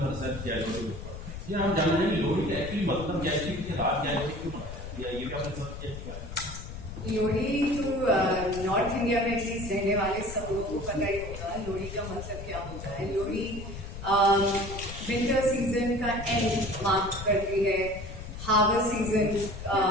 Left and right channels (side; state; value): left; noise; rumble, 10 dB below the sound